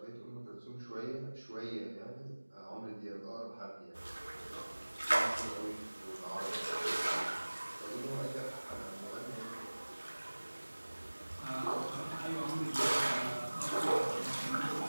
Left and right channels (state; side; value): inverted; both; correlation -1.00